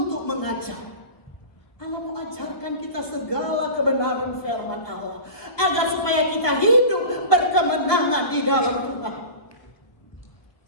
mengajar. Allah mau ajarkan kita segala kebenaran firman Allah, agar supaya kita hidup berkemenangan di dalam Tuhan.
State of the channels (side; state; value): right; late; 1.2 ms